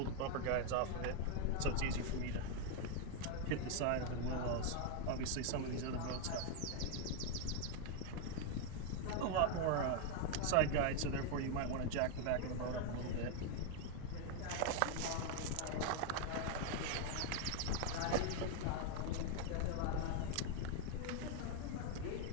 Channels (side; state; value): both; different; correlation 0.01